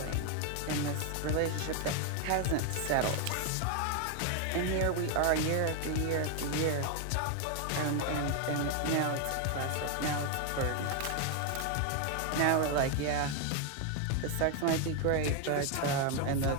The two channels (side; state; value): both; different; correlation 0.01